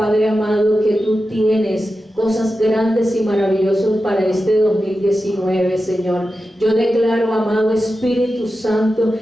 amado, que tú tienes cosas grandes y maravillosas para este 2019, Señor. Yo declaro, amado Espíritu Santo,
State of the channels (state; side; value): normal; both; correlation 0.92